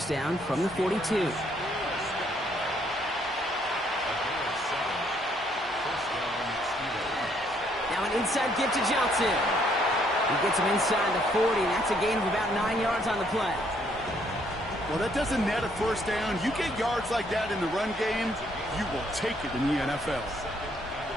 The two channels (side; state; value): both; normal; correlation 0.68